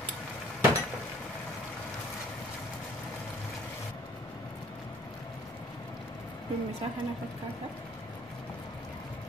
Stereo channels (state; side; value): normal; both; correlation 0.56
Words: Ini misalkan apa kata?